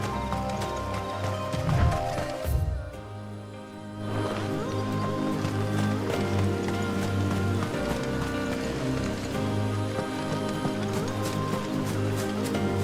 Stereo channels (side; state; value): both; identical; correlation 1.00